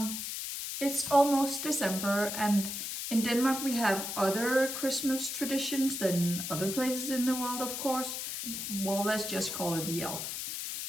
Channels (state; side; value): noise; left; hiss, 4 dB below the sound